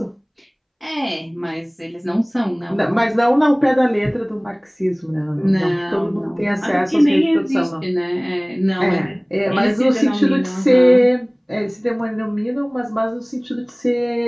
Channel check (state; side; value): identical; both; correlation 1.00